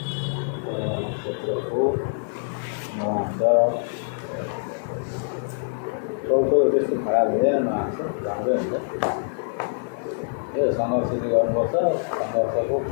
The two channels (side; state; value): right; silent; 56 dB below the other